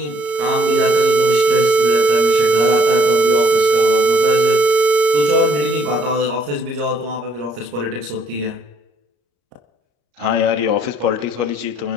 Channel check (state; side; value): late; left; 34 ms